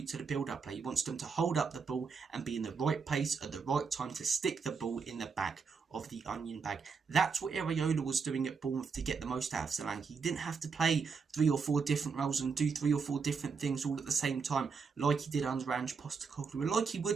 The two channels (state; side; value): quieter; left; 5.4 dB